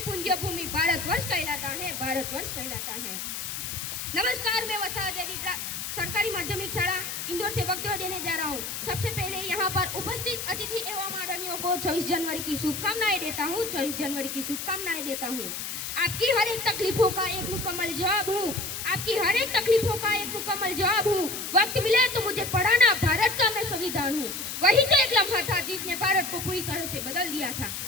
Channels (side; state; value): left; noise; hiss, 5 dB below the sound